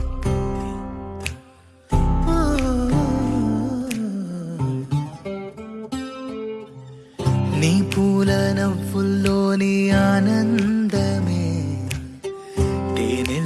నీ పూల నవ్వుల్లోని ఆనందమే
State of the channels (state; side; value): identical; both; correlation 1.00